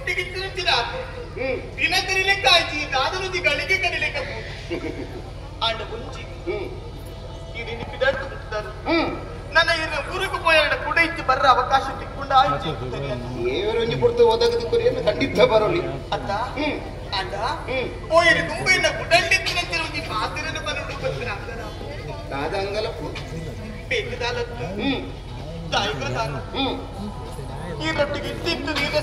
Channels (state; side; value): identical; both; correlation 1.00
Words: ತಿನ್ನುತ್ತಿನ ದಿನ ಕರಿಲೆಕ್ಕ ಆಯ್ತು ಈ ದಾದಲುದಿ ಗಳಿಗೆ ಕರಿಲೆಕ್ಕ ಆಂಡ ಮುಂಚಿ ಈ ನಿನ್ನ ಪಿದಾಡ್ತು ಮುಟ್ಟಾರು ನನ್ನ ಇನ್ನು ಊರಿಗೆ ಪೋಯಾಡ ಕೂಡ ಇತ್ತು ಬರ್ರ ಅವಕಾಶ ತಿಕ್ಕೊಂಡ ಆಯ್ತು ಏವರೊಂಜಿ ಕೊಡ್ತು ಒದಗದು ಕೊರಿಯನ್ನು ಖಂಡಿತ ಬರೋಲಿ ಅತ್ತ ಆಂಡ ಪೋಯರಿ ತುಂಬ ಇನ್ನ ಗುಡಂಡಿತ್ತಿನಂತಿನ ಒಂದು ಮಾತಿನ ಬರೋಡು ಬರ್ತೀನಿ ಅಂಗನ ಕಾದಂಗಲ ಬೇಕದಾಲತ್ತು ತಾಯಿಗದಾನ ಈ ರೊಟ್ಟಿಗೆ ಇಟ್ಟಿತ್ತು ನೀರ